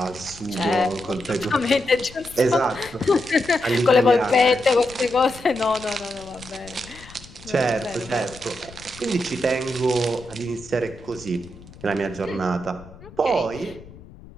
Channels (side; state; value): left; noise; rumble, 19 dB below the sound